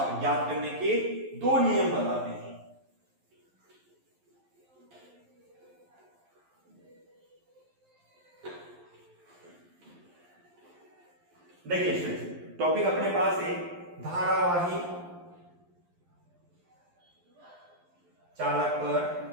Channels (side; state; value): left; late; 11 ms